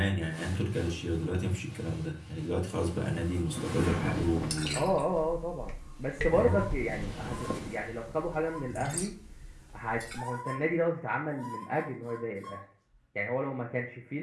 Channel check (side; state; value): both; identical; correlation 1.00